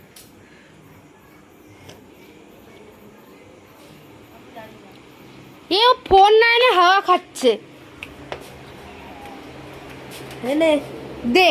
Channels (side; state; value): both; identical; correlation 1.00